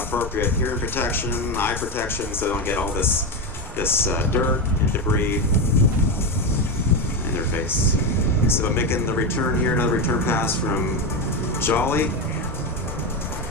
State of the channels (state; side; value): normal; both; correlation 0.13